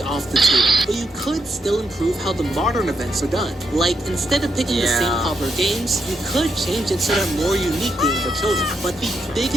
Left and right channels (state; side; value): normal; both; correlation 0.81